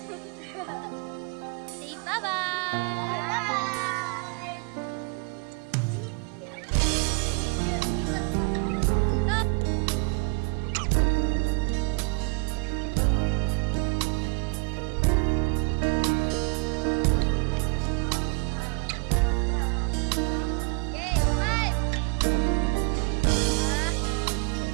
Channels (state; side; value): quieter; left; 33.5 dB